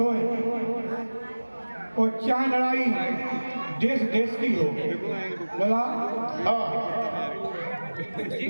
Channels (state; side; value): inverted; both; correlation -1.00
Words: और क्या लड़ाई देश देश की हो। लला हाँ